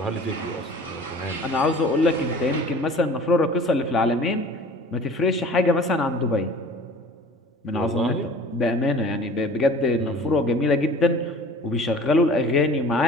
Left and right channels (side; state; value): both; normal; correlation 0.45